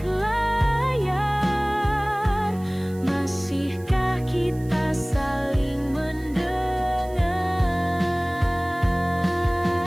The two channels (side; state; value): right; noise; hiss, 24 dB below the sound